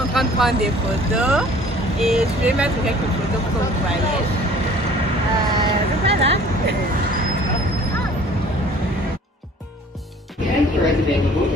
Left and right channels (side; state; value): both; normal; correlation 0.51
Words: en train de prendre des photos et je vais mettre quelques photos pour que vous voyez. Donc voilà.